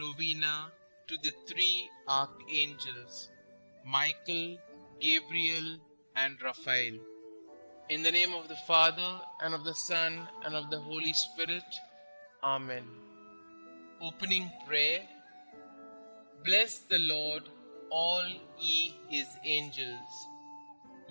to the three archangels, Michael, Gabriel, and Raphael. In the name of the Father, and of the Son, and of the Holy Spirit. Amen. Opening prayer. Bless the Lord, all ye his angels,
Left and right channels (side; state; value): both; inverted; correlation -1.00